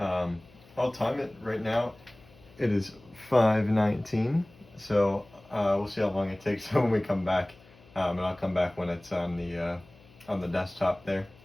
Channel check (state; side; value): noise; left; hum, 26 dB below the sound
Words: time it right now. It is 5:19. So we'll see how long it takes when we come back. And I'll come back when it's on the desktop there.